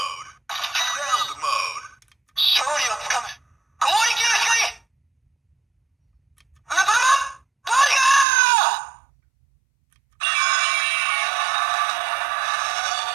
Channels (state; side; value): drops out; left; at 8.2 s